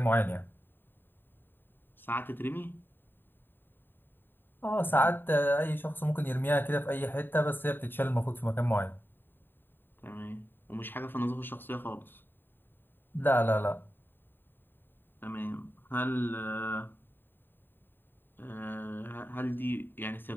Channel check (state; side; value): late; right; 0.095 ms